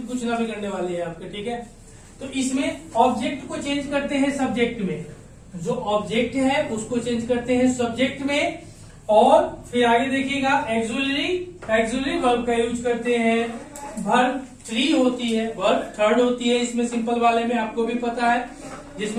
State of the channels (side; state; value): both; identical; correlation 1.00